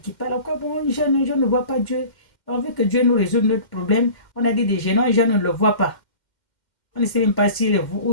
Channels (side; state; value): right; late; 2.1 ms